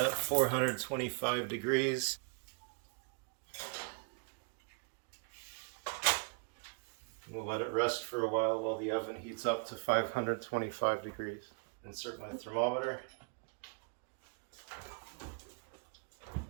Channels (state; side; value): quieter; left; 36.2 dB